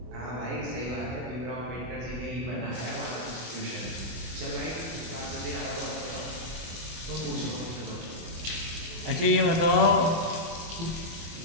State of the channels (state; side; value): late; left; 24 ms